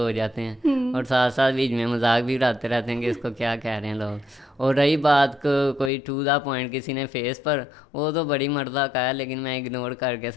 جاتے ہیں, اور ساتھ ساتھ بیچ میں مذاق بھی اڑاتے رہتے ہیں کہ اس کو کیا کہہ رہے ہیں لوگ. اور رہی بات کوئی ٹو دا پوائنٹ کسی نے فیس پر, وہ تو بڑی مردہ کا ہے, لیکن میں اگنور کر کے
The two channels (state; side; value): drops out; right; at 5.9 s